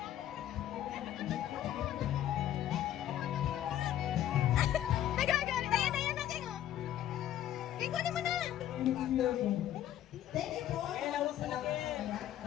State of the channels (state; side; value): quieter; right; 11.8 dB